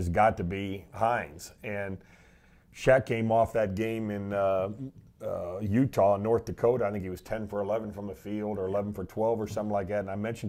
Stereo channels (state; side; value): identical; both; correlation 1.00